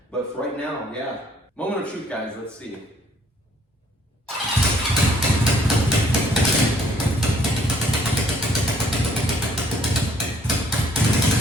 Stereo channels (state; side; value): normal; both; correlation 0.63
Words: But for right now, yeah. Moment of truth, guys, let's see.